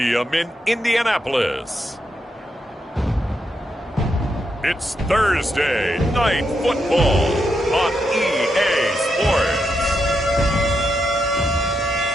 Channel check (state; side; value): normal; both; correlation 0.82